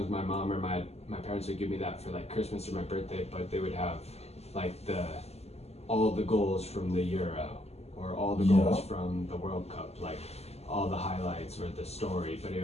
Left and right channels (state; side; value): late; right; 0.30 ms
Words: my mom or my parents would give me that for like Christmas or my birthday, but they would have like all the goals from the Euro or all the goals from the World Cup, like all the highlights or the story, but it